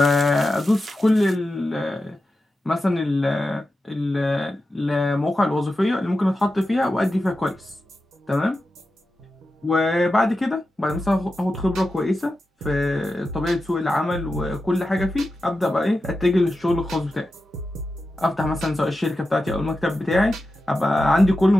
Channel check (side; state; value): both; normal; correlation 0.91